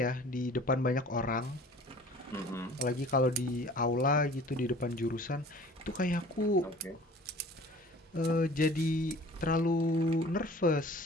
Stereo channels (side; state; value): both; normal; correlation 0.47